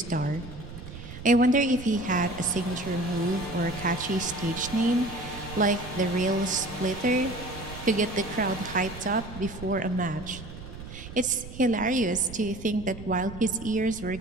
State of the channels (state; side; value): noise; right; rumble, 13 dB below the sound